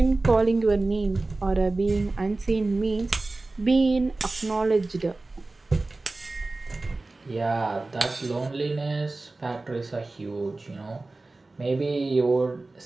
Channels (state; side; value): quieter; left; 3.2 dB